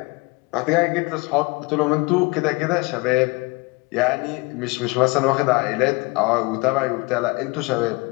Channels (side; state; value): right; quieter; 26.0 dB